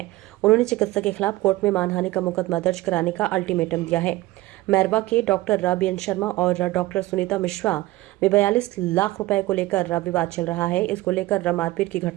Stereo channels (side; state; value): left; quieter; 18.1 dB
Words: उन्होंने चिकित्सक के खिलाफ कोर्ट में मानहानि का मुकदमा दर्ज कराने का अल्टीमेटम दिया है। मैरवा के डॉक्टर बीएन शर्मा और डॉक्टर सुनीता मिश्रा में 42 लाख रुपए को लेकर विवाद चल रहा है। इसको लेकर मारपीट की